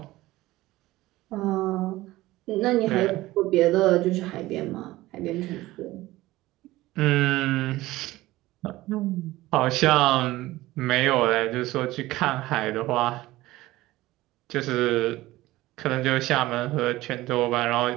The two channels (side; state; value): left; quieter; 17.7 dB